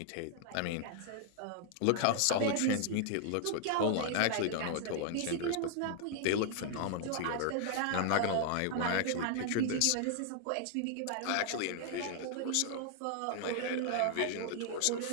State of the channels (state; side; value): different; both; correlation 0.00